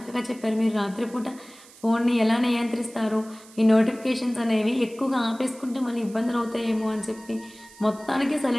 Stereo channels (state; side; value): noise; right; hiss, 22 dB below the sound